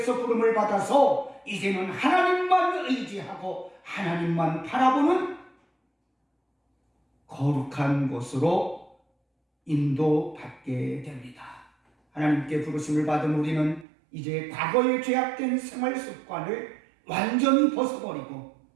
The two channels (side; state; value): left; drops out; at 13.9 s